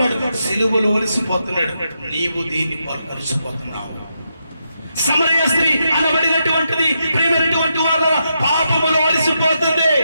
సిలువలు అలసిపోతున్నాడు. నీవు దీన్ని అలసిపోతున్నావు. సమరయ స్త్రీ అనబడినటువంటిది ప్రియమైనటువంటి వారు పాపములో అలసిపోతుంది.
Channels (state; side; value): inverted; both; correlation -0.83